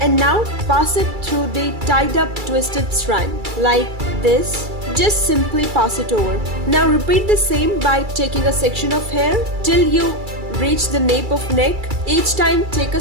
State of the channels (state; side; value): late; left; 2.3 ms